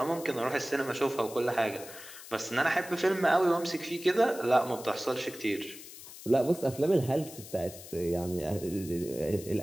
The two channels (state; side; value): noise; left; hiss, 15 dB below the sound